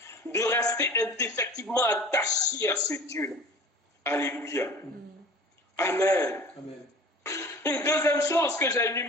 De rester indéfectiblement attaché à ce Dieu. Alléluia. Amen. Amen. Une deuxième chose que j'ai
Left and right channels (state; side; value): normal; both; correlation 0.43